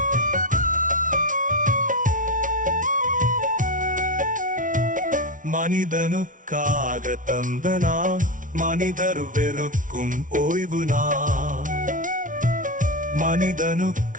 மனிதனுக்காக தந்த நாள். மனிதர் வெறுக்கும் ஓய்வு நாள்.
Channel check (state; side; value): late; left; 0.38 ms